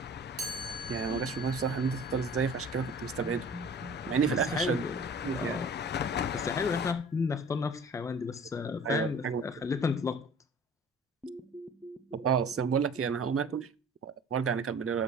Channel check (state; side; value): normal; both; correlation 0.45